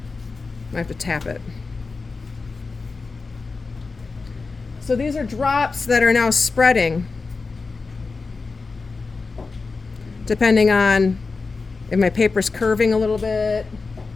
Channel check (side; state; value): right; quieter; 4.2 dB